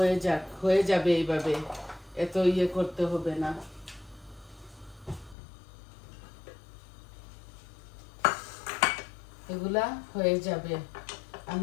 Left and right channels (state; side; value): drops out; right; at 5.4 s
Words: হয়ে যাবে এইভাবে, এত ইয়ে করতে হবে না। এগুলা হয়ে যাবে,